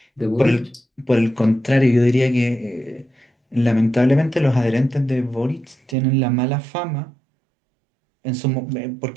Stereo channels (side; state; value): left; drops out; at 6.0 s